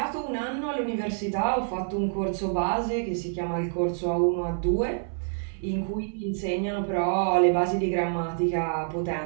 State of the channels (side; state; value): left; silent; 60 dB below the other